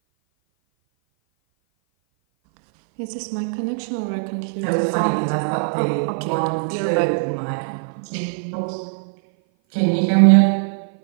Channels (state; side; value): silent; left; 57 dB below the other